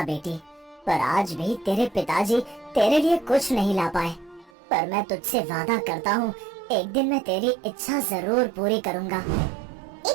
बेटी, पर आज भी तेरे पिताजी तेरे लिए कुछ नहीं ला पाए। पर मैं तुझसे वादा करता हूँ, एक दिन मैं तेरी इच्छा जरूर पूरी करूँगा।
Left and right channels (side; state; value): left; drops out; at 4.5 s